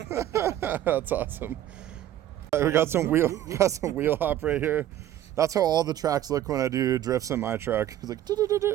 That's awesome. We got some wheel hop right here. That's how all the tracks look when I do drifts in my truck. It's like.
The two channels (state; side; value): quieter; left; 12.3 dB